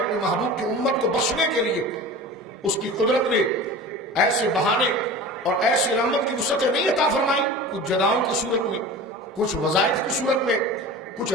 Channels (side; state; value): both; normal; correlation 0.35